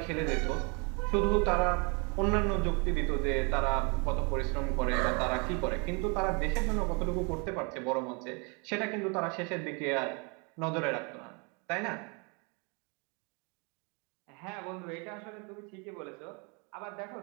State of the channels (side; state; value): left; quieter; 33.1 dB